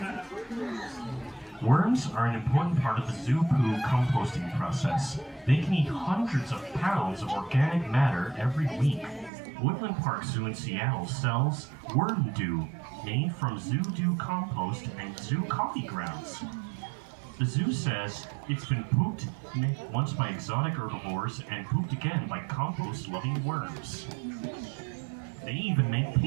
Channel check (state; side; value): drops out; left; at 9.3 s